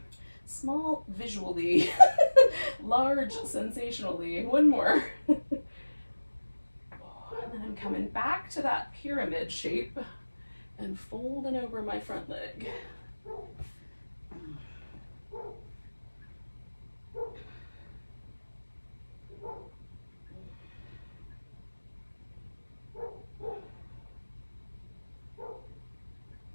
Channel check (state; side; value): inverted; both; correlation -1.00